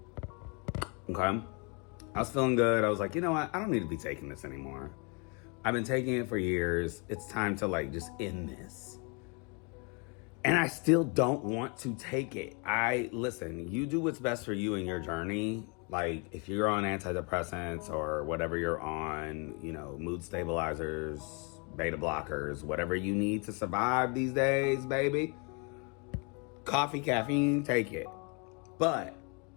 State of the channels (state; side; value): quieter; right; 33.8 dB